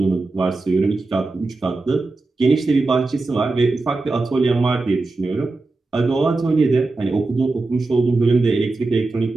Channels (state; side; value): quieter; left; 3.5 dB